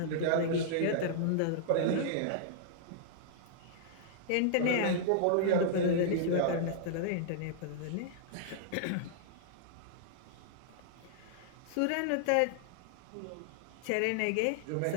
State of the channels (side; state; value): both; different; correlation -0.01